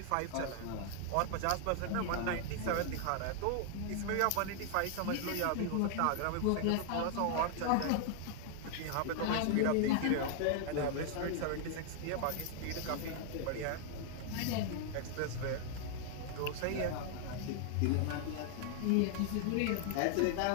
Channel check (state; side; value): different; both; correlation 0.00